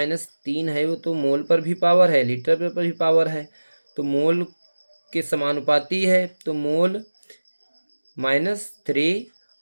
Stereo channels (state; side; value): inverted; both; correlation -1.00